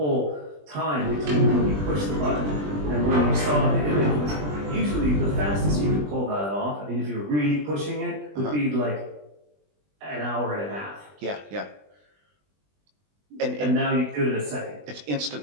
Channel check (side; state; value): left; late; 20 ms